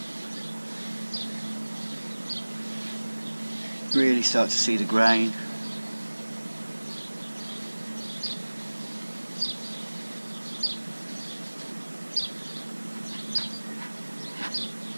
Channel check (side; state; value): both; inverted; correlation -1.00